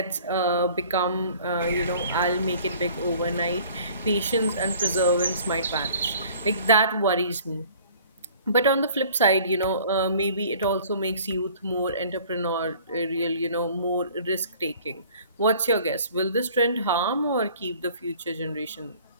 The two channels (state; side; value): inverted; both; correlation -0.51